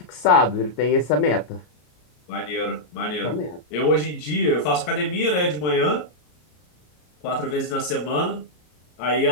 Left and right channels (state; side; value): late; right; 33 ms